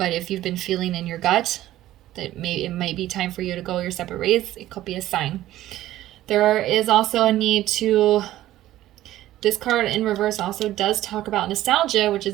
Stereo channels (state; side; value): quieter; left; 14.4 dB